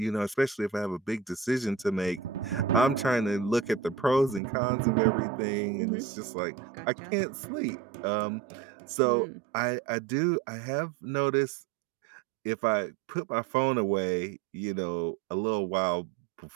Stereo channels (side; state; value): left; drops out; at 4.4 s